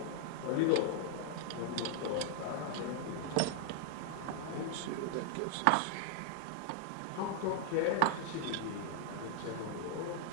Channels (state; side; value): different; both; correlation 0.00